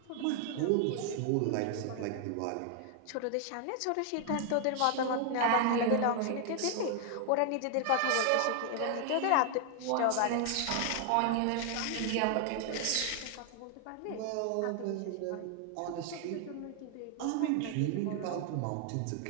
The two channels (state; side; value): different; both; correlation 0.00